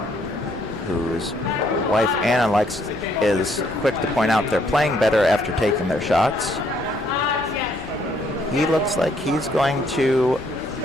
whose wife Anna is quick to point out they're playing better after taking their shots. He looks like he's going to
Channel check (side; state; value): both; normal; correlation 0.69